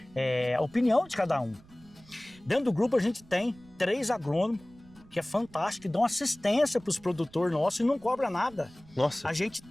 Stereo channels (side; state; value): right; noise; rumble, 25 dB below the sound